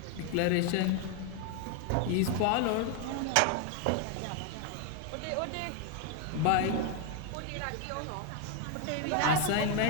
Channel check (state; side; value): different; both; correlation 0.01